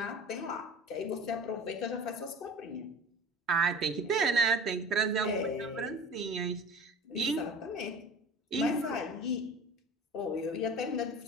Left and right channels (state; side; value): normal; both; correlation 0.38